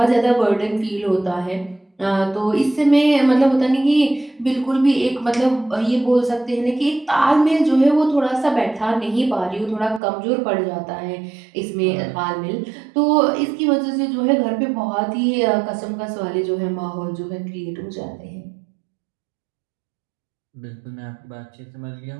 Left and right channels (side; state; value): left; drops out; at 10.0 s